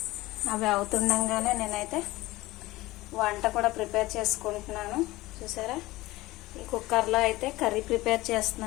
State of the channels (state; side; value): quieter; right; 19.0 dB